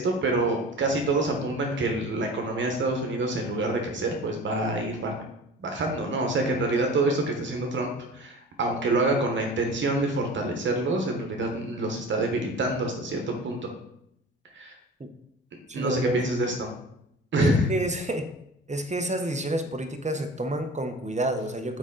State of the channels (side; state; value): both; normal; correlation 0.39